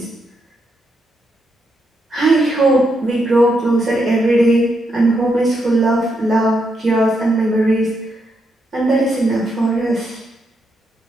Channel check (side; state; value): both; normal; correlation 0.80